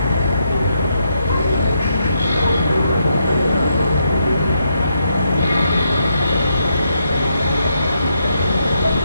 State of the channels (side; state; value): both; inverted; correlation -0.79